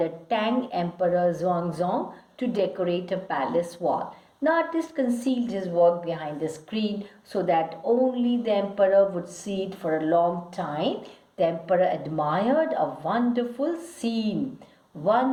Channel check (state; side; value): identical; both; correlation 1.00